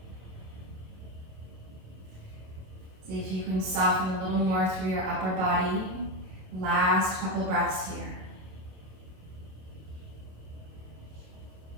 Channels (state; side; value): late; left; 27 ms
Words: See if you can soften a little more through your upper body. Last couple breaths here.